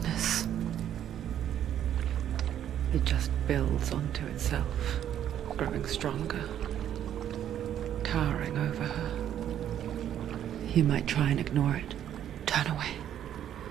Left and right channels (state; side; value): quieter; left; 10.5 dB